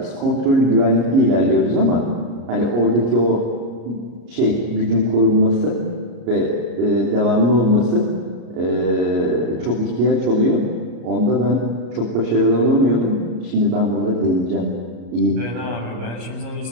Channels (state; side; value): late; left; 34 ms